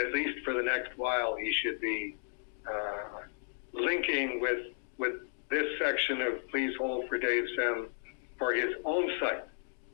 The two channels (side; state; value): right; silent; digital silence